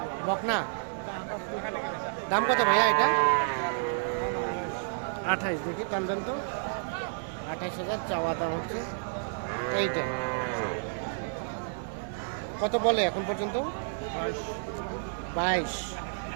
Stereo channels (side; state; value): left; silent; digital silence